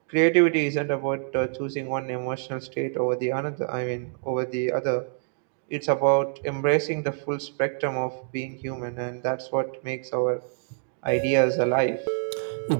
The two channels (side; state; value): left; silent; digital silence